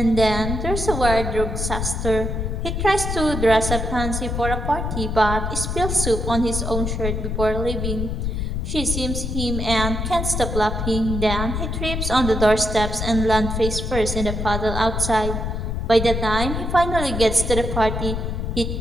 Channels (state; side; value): noise; left; rumble, 2 dB below the sound